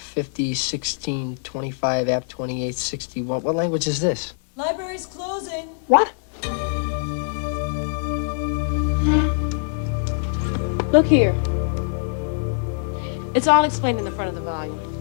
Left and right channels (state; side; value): silent; right; 63 dB below the other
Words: 50, 16, 25, app 28, 61. What language is this? Library's closing. What? Look here. It's all explained in the front of the volume.